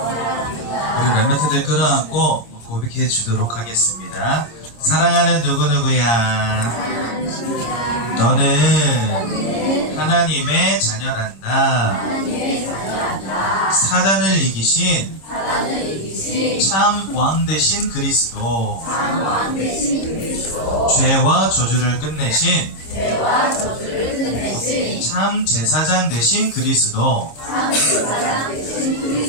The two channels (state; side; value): late; right; 26 ms